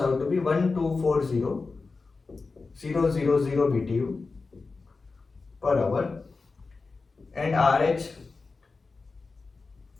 to be 1240,000 BTU per hour, and RH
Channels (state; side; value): quieter; right; 4.1 dB